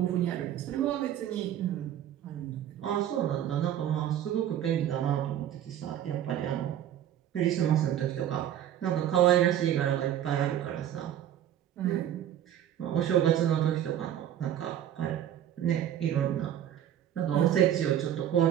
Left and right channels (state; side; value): quieter; left; 10.9 dB